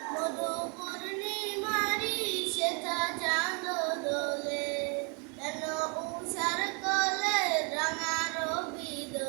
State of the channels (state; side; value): quieter; left; 34.7 dB